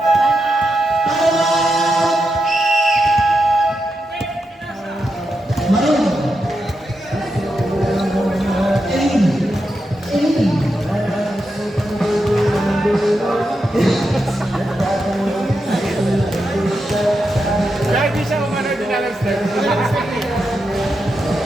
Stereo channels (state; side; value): normal; both; correlation 0.86